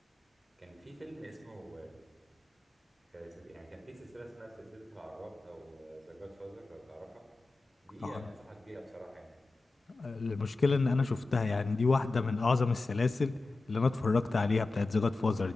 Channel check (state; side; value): quieter; right; 3.5 dB